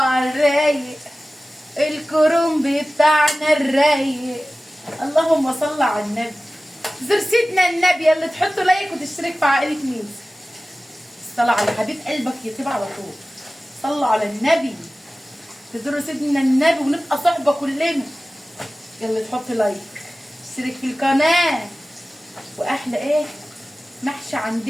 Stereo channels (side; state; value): both; normal; correlation 0.97